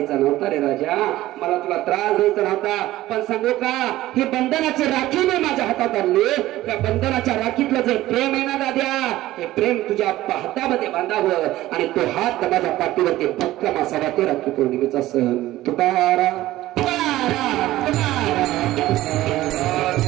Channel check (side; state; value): left; quieter; 15.8 dB